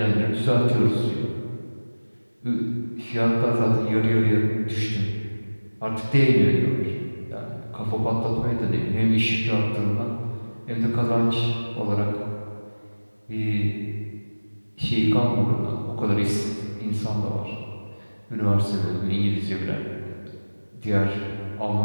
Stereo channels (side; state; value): both; inverted; correlation -1.00